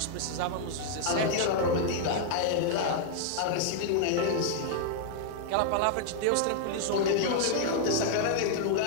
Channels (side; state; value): both; different; correlation -0.01